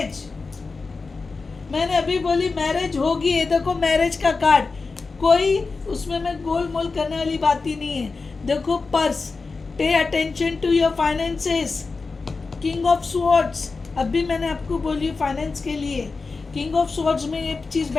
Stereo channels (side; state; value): right; quieter; 4.2 dB